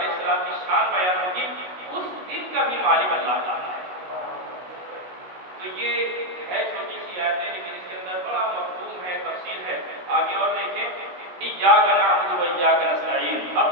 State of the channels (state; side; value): late; left; 16 ms